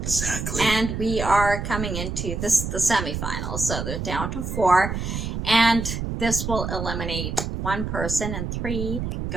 Exactly. And we are coming into the semifinals, so they're down to 4, and this will eliminate one person, and 3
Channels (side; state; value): right; noise; rumble, 4 dB below the sound